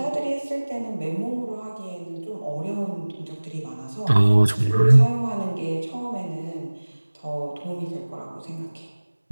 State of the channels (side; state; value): both; inverted; correlation -1.00